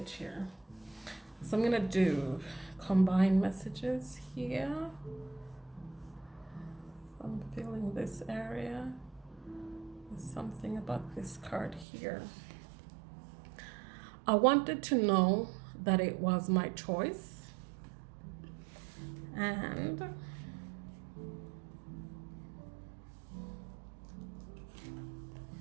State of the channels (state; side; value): drops out; left; at 11.9 s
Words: here. So I'm gonna do combined messages here. I'm feeling this area. There's something about this card here. I wanted to know that it was my choice, and